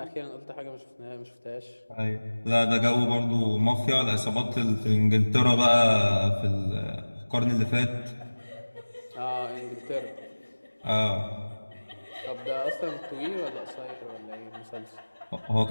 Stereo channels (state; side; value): inverted; both; correlation -1.00